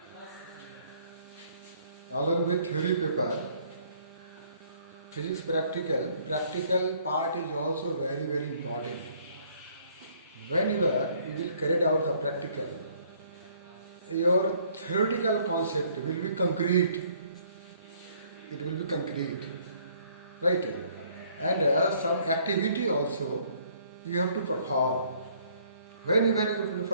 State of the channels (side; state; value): both; inverted; correlation -0.62